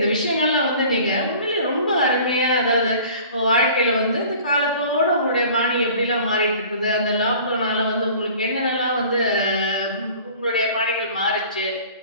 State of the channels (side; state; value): both; inverted; correlation -0.46